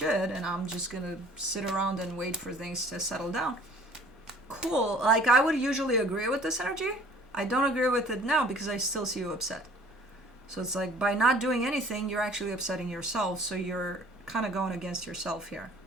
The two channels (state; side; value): normal; both; correlation 0.51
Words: and I'm just going to sit around and wait for things to settle down. Cool. Like, I would usually agree with this energy. I don't agree with it now because I still see you upset. So it's like by not doing anything, you're actually upsetting yourself. So you're kind of going against yourself here,